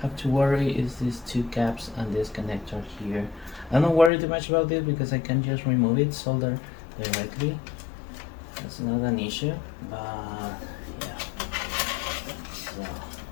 have to worry is these two caps and this connector here. I don't worry too much about this because I can just remove it, solder directly. That's not an issue, but yeah. So,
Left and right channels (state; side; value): drops out; right; at 4.1 s